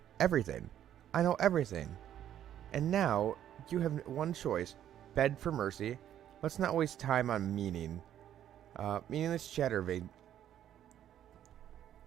Everything. I know everything. And now, you have one choice. Beg for mercy. Let's not waste time on meaningless chatter.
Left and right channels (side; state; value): left; quieter; 10.9 dB